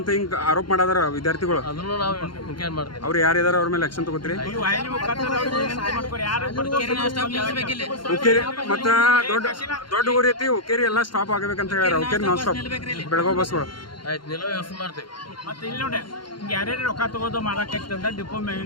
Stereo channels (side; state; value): right; late; 0.72 ms